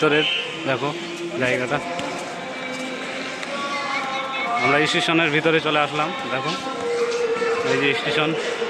দেখো জায়গাটা। আমরা স্টেশনের ভিতরে চলে আসলাম, দেখো এই যে স্টেশন।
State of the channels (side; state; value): both; identical; correlation 1.00